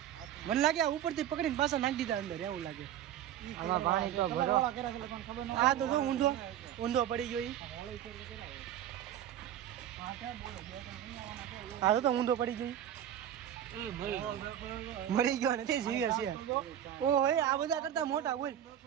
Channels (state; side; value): quieter; left; 10.8 dB